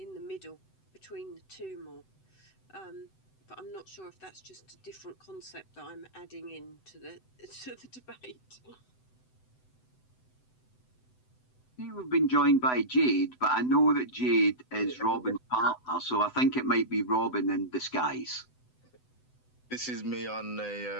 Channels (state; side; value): late; right; 7.9 ms